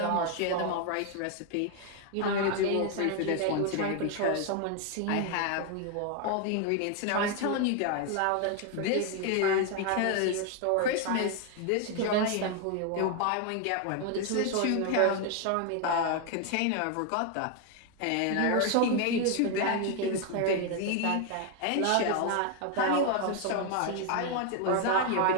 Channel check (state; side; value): different; both; correlation 0.01